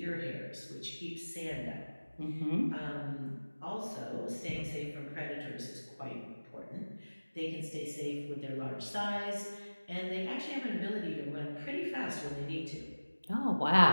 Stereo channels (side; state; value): both; inverted; correlation -1.00